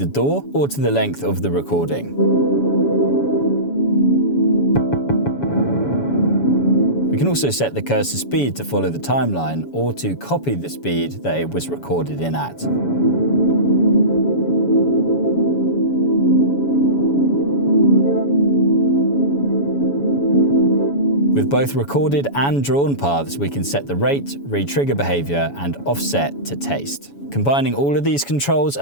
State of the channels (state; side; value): late; right; 7.1 ms